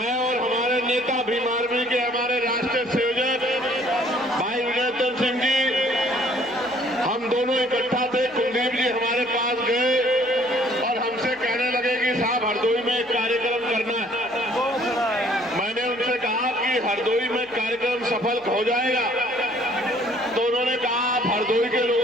और हमारे नेता भीम आर्मी के हमारे राष्ट्रीय संयोजक भाई विजय सिंह जी, हम दोनों इकट्ठा थे। कुलदीप जी हमारे पास गए और हमसे कहने लगे कि साहब हरदोई में एक कार्यक्रम करना है। मैंने उनसे कहा कि हरदोई में कार्यक्रम सफल हो जाएगा? तो उन्होंने कहा आप हरदोई के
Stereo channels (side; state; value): right; noise; hum, 27 dB below the sound